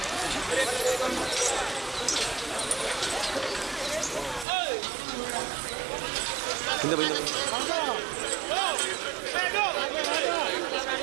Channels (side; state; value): left; drops out; at 4.5 s